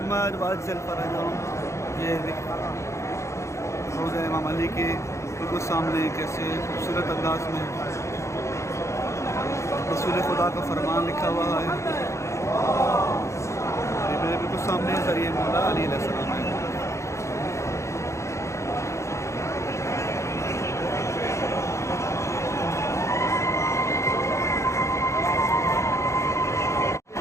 वअज्जिल फरजहुम। ये रोज़ा इमाम अली के बिल्कुल सामने कैसे खूबसूरत अंदाज में रसूल खुदा का फरमान लिखा हुआ है, ये मेरे बिल्कुल सामने ज़रिए मौला अली अलैहिस्सलाम है।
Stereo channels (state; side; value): late; right; 0.14 ms